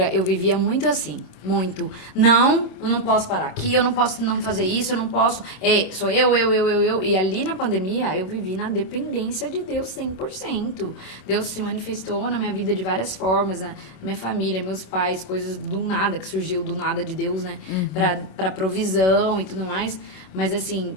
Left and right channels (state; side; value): late; right; 26 ms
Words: Eu vivia muito assim, muito. Não, eu não posso parar aqui, eu não posso não fazer isso, eu não posso... sou eu. E ali na pandemia, eu vivi na dependência de Deus 100%. Deus se manifestou na minha vida de várias formas. A minha família, meus pais, coisas do nada, que surgiu do nada de Deus, né? Pra provisão e tudo mais. Mas, assim,